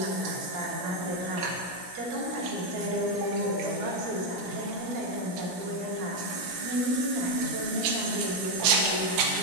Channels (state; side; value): late; left; 17 ms